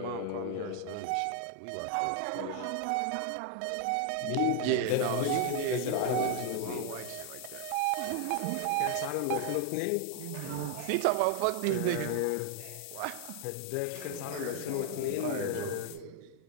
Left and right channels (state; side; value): different; both; correlation 0.00